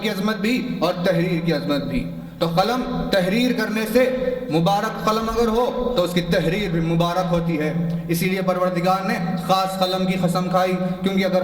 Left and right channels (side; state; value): both; identical; correlation 1.00